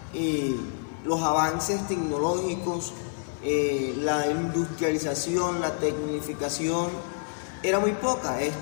y los avances tecnológicos, la industrialización, la tecnificación era muy poca.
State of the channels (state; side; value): silent; right; 60 dB below the other